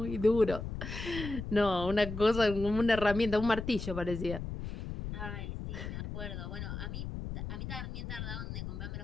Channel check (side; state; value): left; noise; rumble, 6 dB below the sound